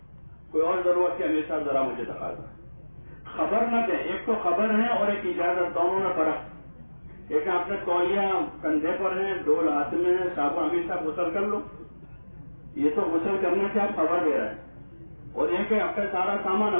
کوئی اور ضرورت ہے، امیر صاحب ذرا مجھے تقاضا، خبر نہ دیں، ایک تو خبر ہے اور ایک اجازت، دونوں میں فرق، ایک آپ نے تولیہ کندھے پر ہے، ڈول ہاتھ میں ہے، صاحب امیر صاحب غسل کر لو. یہ تو غسل کرنے سے آپ خبر دے رہے ہیں. اور یہ کہ آپ کا سارا سامان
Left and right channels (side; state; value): both; inverted; correlation -1.00